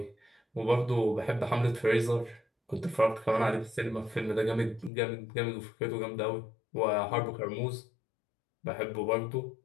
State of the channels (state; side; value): drops out; right; at 4.9 s